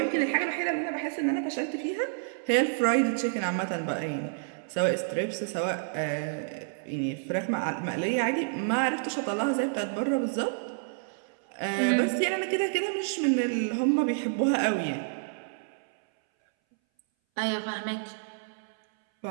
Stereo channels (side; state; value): left; silent; 59 dB below the other